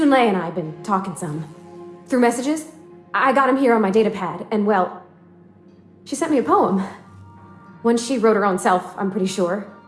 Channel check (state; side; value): identical; both; correlation 1.00